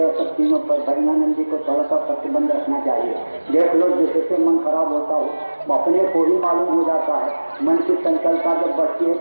सब चीजों पर भजनानंद जी को थोड़ा सा प्रतिबंध रखना चाहिए। देख लो जिससे मन खराब होता हो अपने को ही मालूम हो जाता है। मन की चंचलता जब बढ़ती है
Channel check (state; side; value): inverted; both; correlation -1.00